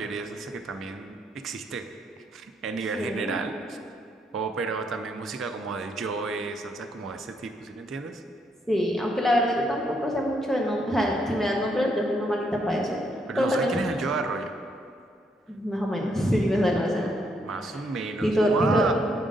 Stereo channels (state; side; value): normal; both; correlation 0.74